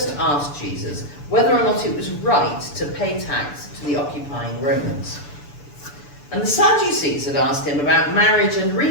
asked Jesus whether or not it was right to pay tax to the occupying Romans. And the Sadducees had asked him about marriage and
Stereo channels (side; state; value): right; late; 6.9 ms